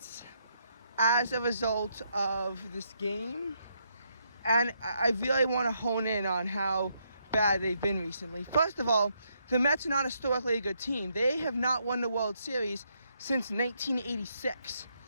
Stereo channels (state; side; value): inverted; both; correlation -0.76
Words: as a result of this game. And I really want to hone in on how bad they've been recently. First of all, the Mets are not historically a good team. They have not won the World Series since 1986.